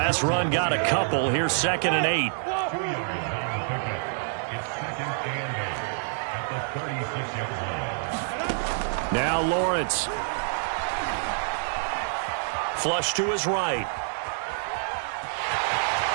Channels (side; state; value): left; silent; digital silence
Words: run got a couple. Here's 2nd and 8. Now Lawrence. Flush to his right.